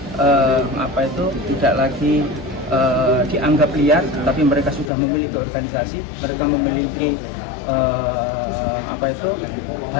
dianggap liar, tapi mereka sudah memiliki organisasi, mereka memiliki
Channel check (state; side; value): drops out; right; at 4.9 s